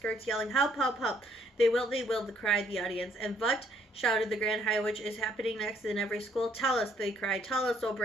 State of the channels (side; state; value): both; normal; correlation 0.66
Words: yelling, "Help, help, help." They will, cried the audience. And what, shouted the Grand High Witch, is happening next in every school? Tell us, they cried. Tell us, oh